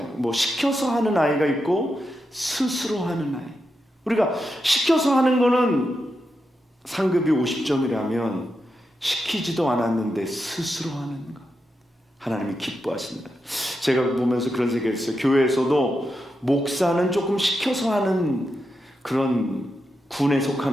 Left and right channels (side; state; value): both; normal; correlation 0.87